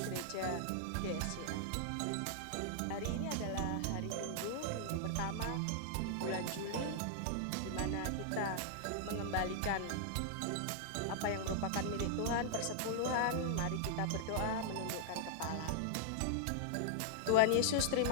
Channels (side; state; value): both; different; correlation -0.01